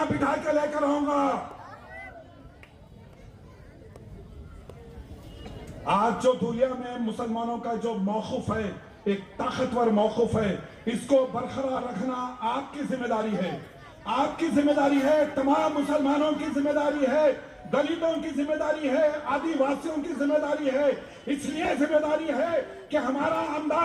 बिठा के लेकर आऊंगा। आज जो दुनिया में मुसलमानों का जो मौकूफ है, एक ताकतवर मौकूफ है, इसको बरकरार रखना आपकी जिम्मेदारी है, आपकी जिम्मेदारी है, तमाम मुसलमानों की जिम्मेदारी है, दलितों की जिम्मेदारी है, आदिवासियों की जिम्मेदारी है। इसलिए जिम्मेदारी है कि हमारा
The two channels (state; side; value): identical; both; correlation 1.00